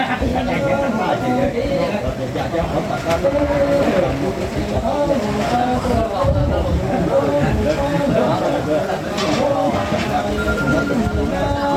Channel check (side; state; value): both; identical; correlation 1.00